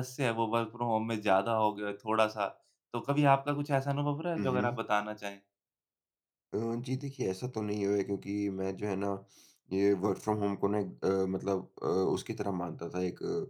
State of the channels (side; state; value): both; identical; correlation 1.00